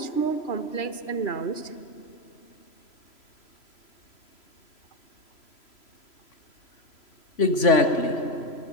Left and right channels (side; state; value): right; late; 3.0 ms